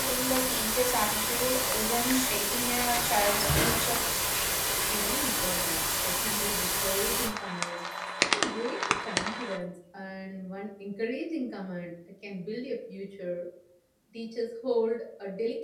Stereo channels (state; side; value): identical; both; correlation 1.00